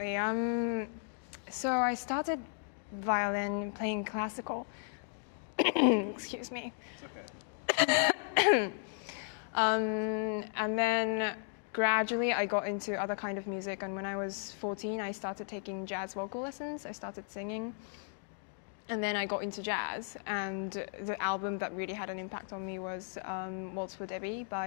So I started violin playing classical. Excuse me. It's okay. And then gradually I got into other kind of music, and when I was 14 I started taking jazz vocal lessons. I started singing, and then I got into jazz, and the album that really had an impact on me was Waltz for Debbie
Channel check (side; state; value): right; silent; digital silence